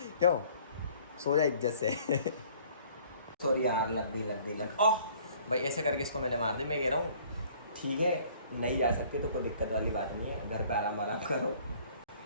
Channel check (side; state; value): both; inverted; correlation -0.55